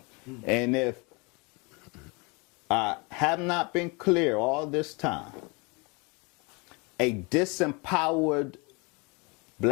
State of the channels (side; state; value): right; quieter; 29.4 dB